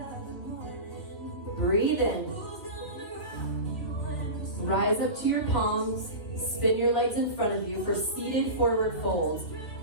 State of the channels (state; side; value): late; right; 2.9 ms